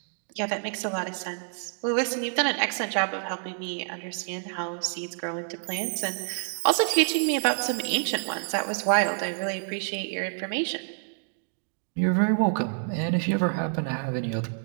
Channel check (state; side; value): silent; left; 59 dB below the other